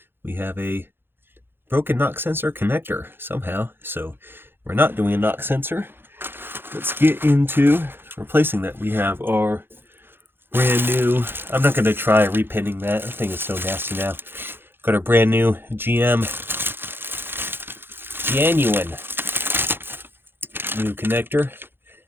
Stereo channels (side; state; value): left; late; 0.10 ms